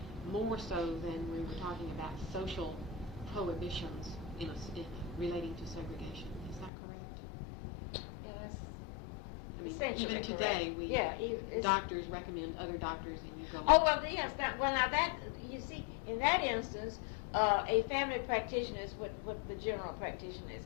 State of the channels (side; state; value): right; drops out; at 6.7 s